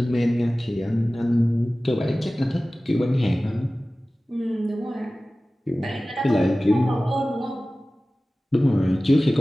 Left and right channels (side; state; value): both; normal; correlation 0.97